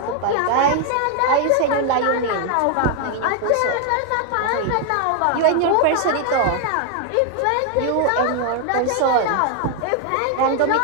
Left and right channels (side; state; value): both; different; correlation 0.00